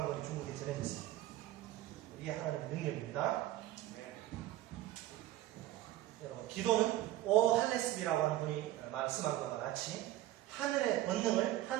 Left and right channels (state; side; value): quieter; left; 14.8 dB